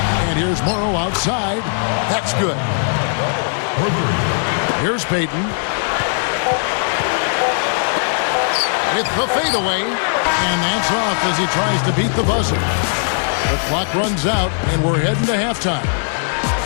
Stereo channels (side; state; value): right; silent; 66 dB below the other